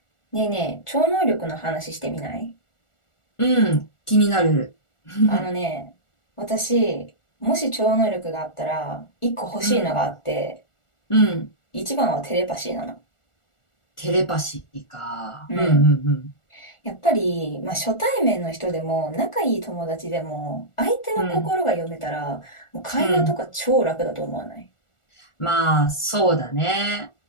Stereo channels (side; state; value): right; late; 1.4 ms